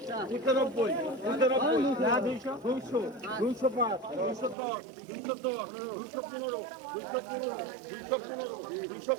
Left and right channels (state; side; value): drops out; left; at 4.5 s